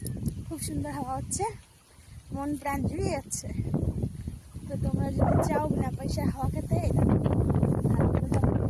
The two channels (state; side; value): identical; both; correlation 1.00